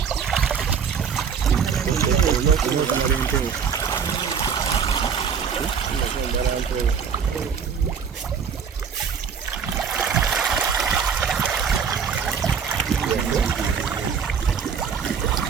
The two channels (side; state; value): left; quieter; 6.7 dB